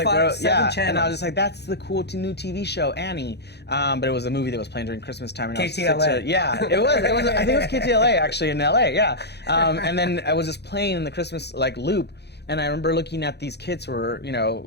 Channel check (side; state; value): right; late; 0.49 ms